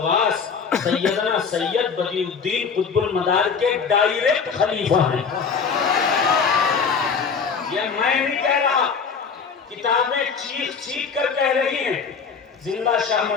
سیدنا سید بدیع الدین قطب المدار کے ڈائریکٹ خلیفہ ہیں. یہ میں نہیں کہہ رہا، کتابیں چیخ کر کہہ رہی ہیں. زندہ شاہ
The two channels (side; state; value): right; quieter; 5.8 dB